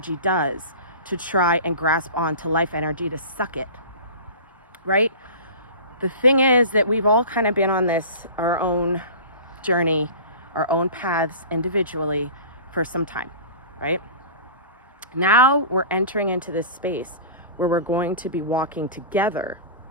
does to try and grasp on to life energy, to suck it, right? The thing is that we've all kind of been on our own journey, our own paths individually for some time, right? Now we're entering into this space where we're going to be walking together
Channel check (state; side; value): inverted; both; correlation -0.36